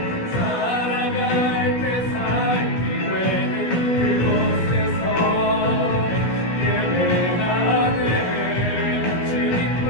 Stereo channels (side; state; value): right; late; 17 ms